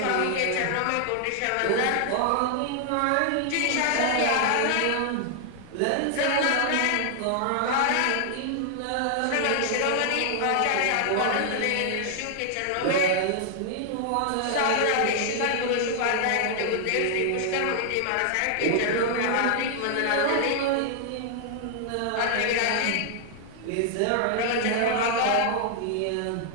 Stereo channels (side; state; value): both; different; correlation 0.00